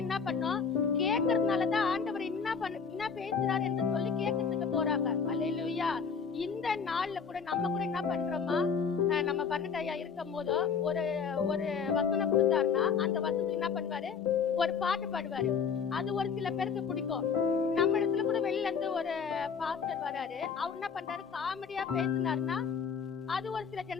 என்ன பண்ணும், கேட்கறதுனாலதான் ஆண்டவர் என்ன பேசுறாரு என்று சொல்லி கேட்கறதுக்கு போறாங்க. அல்லேலூயா. இந்த நாள்ல கூட நம்ம கூட என்ன பண்றோமா, நம்ம பன்னெண்டாயா இருக்கும் போது ஒரு வசனம் கொடுத்தாருன்னா அந்த வசனத்துக்கு என்ன பண்ணுவாரு, ஒரு பாட்டு பாடுவாரு. அது ஒரு சில பேருக்கு பிடிக்கும். நம்ம இடத்துல கூட வெளியில இருந்து ஒரு பாஸ்டர் வராரு, அவர் என்ன பண்றாரு, காமெடியா பேசினாருன்னா அது ஒரு சில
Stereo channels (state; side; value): quieter; right; 6.2 dB